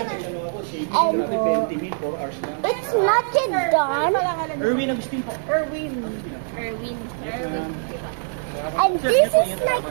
And it's not yet done. Erwin Agustin po. Erwin. And this is like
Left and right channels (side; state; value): left; silent; digital silence